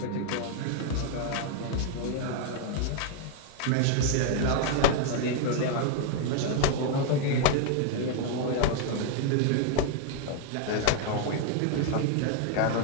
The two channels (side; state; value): both; different; correlation 0.00